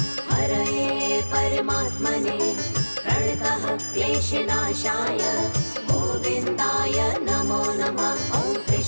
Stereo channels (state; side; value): inverted; both; correlation -1.00